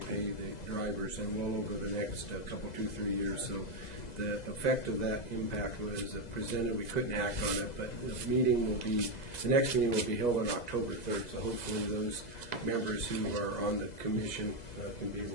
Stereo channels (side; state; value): right; late; 2.0 ms